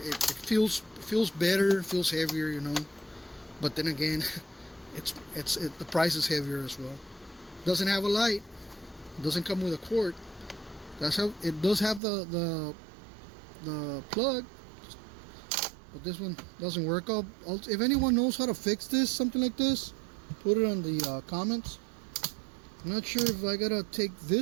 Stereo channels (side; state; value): left; drops out; at 12.0 s